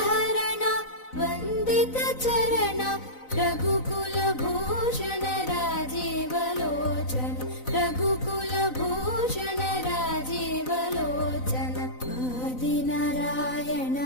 वन्दित चरण रघुकुलभूषण राजीवलोचन रघुकुलभूषण राजीवलोचन आदिनारायण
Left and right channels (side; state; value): right; late; 4.0 ms